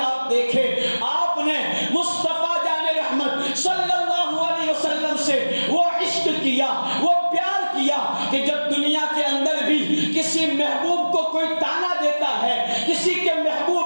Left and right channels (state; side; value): inverted; both; correlation -1.00